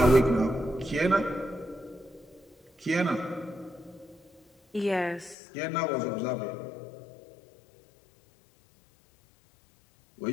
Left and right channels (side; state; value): right; drops out; at 5.4 s